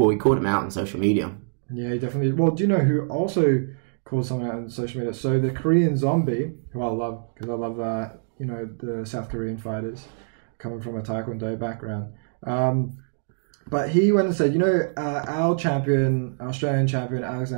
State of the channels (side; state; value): left; silent; digital silence